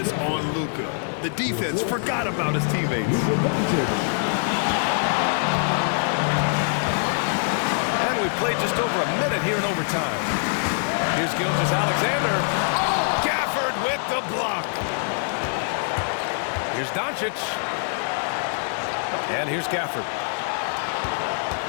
on Luka. The defense forgot about his teammates. And we played just over a minute here in overtime. Here's Gilgeous-Alexander. Gafford with the block. Here's Doncic. And here's Gafford.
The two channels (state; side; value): silent; right; digital silence